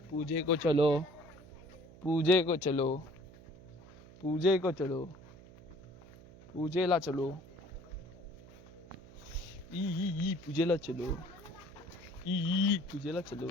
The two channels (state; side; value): noise; right; hum, 20 dB below the sound